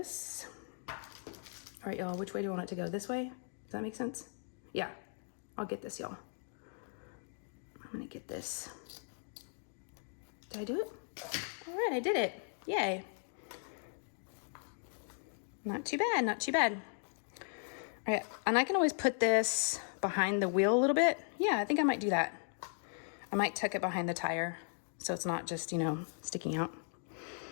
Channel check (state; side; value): silent; right; 53 dB below the other